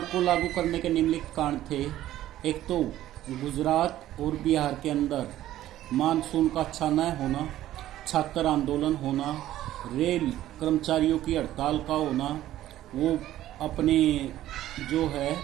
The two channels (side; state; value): left; quieter; 13.6 dB